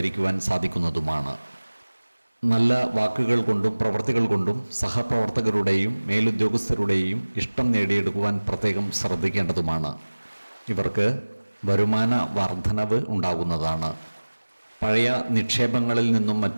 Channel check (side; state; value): both; inverted; correlation -1.00